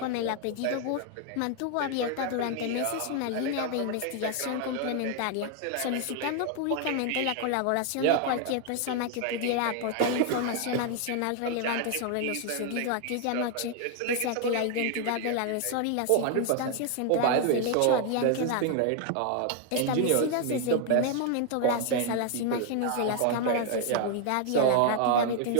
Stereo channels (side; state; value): both; different; correlation 0.00